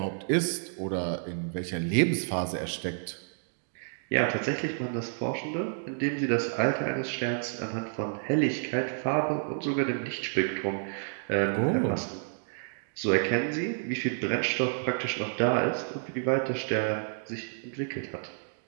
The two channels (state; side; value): silent; left; digital silence